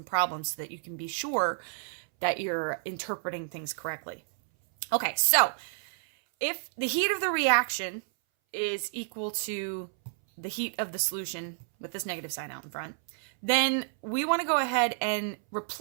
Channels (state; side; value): silent; left; 58 dB below the other